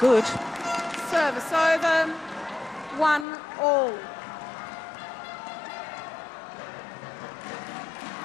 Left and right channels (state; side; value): drops out; right; at 3.2 s